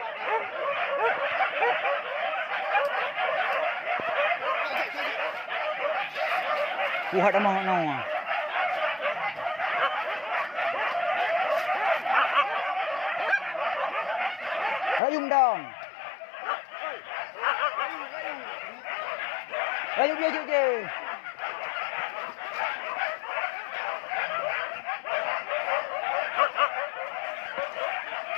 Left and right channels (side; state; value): right; drops out; at 15.0 s